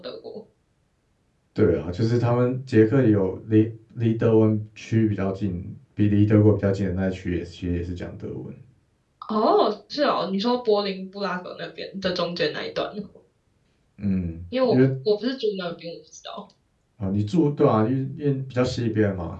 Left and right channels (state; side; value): identical; both; correlation 1.00